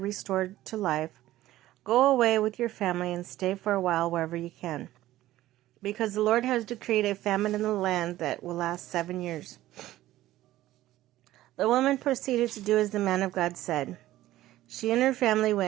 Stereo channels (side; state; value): left; quieter; 15.1 dB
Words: restored to life, "Go away with your family and stay for a while wherever you can, because the Lord has decreed a famine in the land that will last 7 years." The woman proceeded to do as the man of God said. She and her family